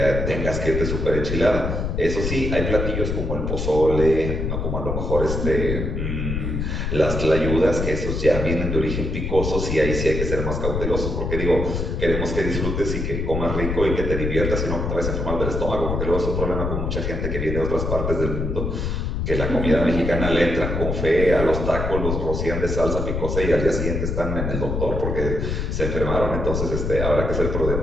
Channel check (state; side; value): noise; left; rumble, 2 dB below the sound